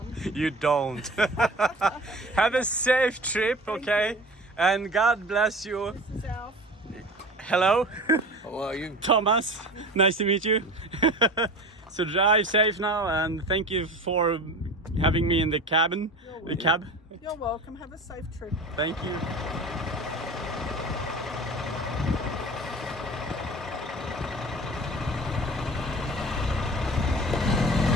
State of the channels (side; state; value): both; normal; correlation 0.36